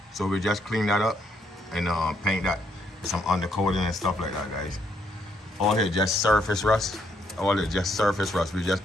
So we just clean that up and paint that with some undercoating and stuff like that, guys. All here just surface rust. All it just surface rust. We just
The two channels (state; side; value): normal; both; correlation 0.73